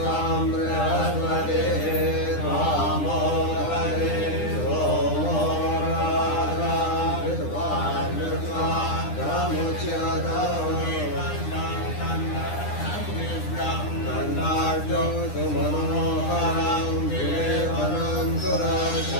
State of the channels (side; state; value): right; late; 9.9 ms